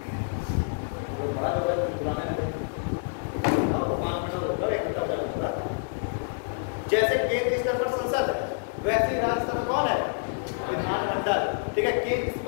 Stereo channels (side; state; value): right; silent; 60 dB below the other